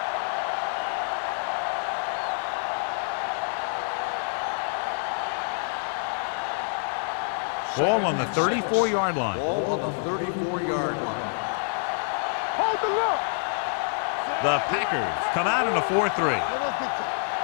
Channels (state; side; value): silent; right; digital silence